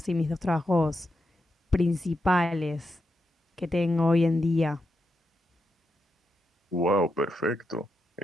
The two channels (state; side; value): normal; both; correlation 0.85